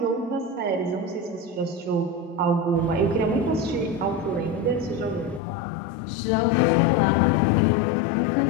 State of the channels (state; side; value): drops out; right; at 5.4 s